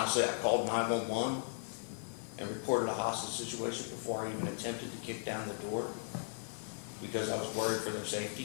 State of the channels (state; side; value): silent; right; digital silence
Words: I called 911 and reported a hostage situation before I even attempted to kick down the door because I was worried for their